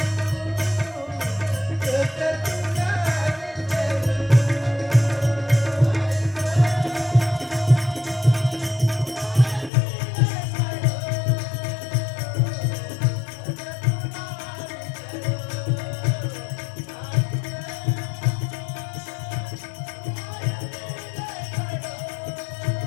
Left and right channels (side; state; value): right; drops out; at 9.7 s